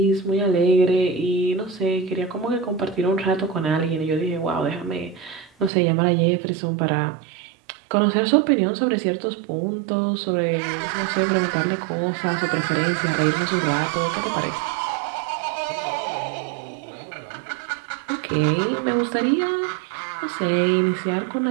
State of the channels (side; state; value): left; drops out; at 5.7 s